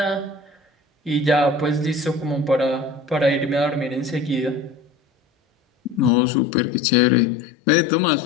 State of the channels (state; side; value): drops out; right; at 6.1 s